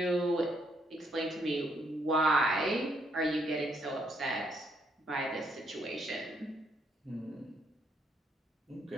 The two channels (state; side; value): normal; both; correlation 0.72